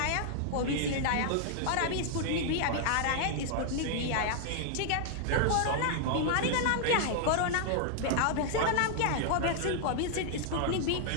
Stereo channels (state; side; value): different; both; correlation -0.01